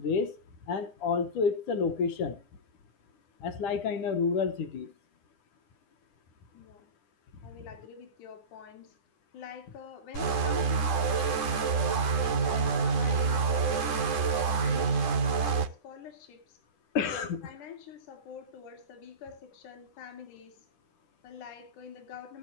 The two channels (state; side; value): late; right; 10 ms